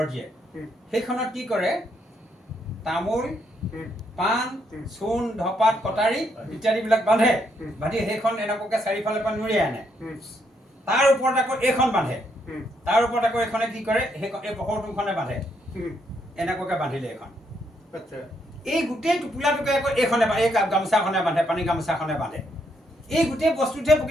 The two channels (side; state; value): both; normal; correlation 0.75